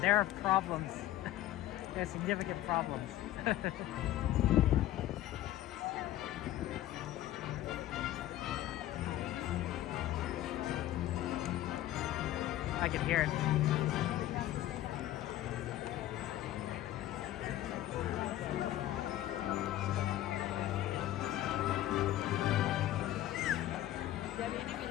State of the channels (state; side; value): quieter; right; 14.0 dB